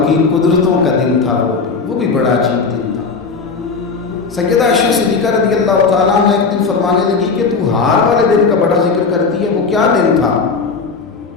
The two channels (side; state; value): right; quieter; 4.7 dB